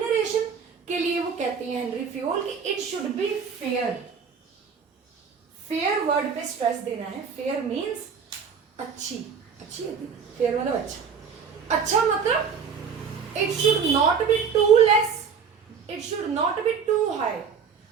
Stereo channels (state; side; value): quieter; left; 6.4 dB